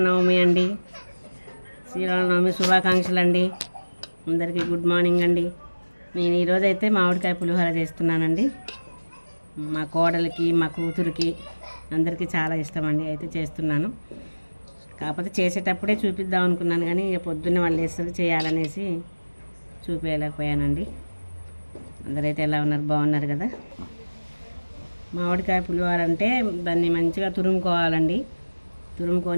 అండి. శ్రీరామనవమి శుభాకాంక్షలు అండి. అందరికీ గుడ్ మార్నింగ్ అండి. నేను ఈరోజైతే మామిడికాయ పులిహోర చేస్తున్నానండి. మా కోడలికి మా కూతురికి అందరికీ చాలా ఇష్టం అండి. అయితే చేస్తున్నాను. కాకపోతే చేసేటప్పుడే చూపిద్దాం అనుకున్నాను, కానీ ఇక పొద్దున్నే వాళ్ళు వేస్తారు చేయాలనేసి చూపించలేకపోయానండి. అందరైతే ఎలా ఉన్నారు? బాగున్నారు కదా? మామిడికాయ పులిహోర అంటే దాన్ని మంచిగా తురుముకోవాలండి.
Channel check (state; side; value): inverted; both; correlation -1.00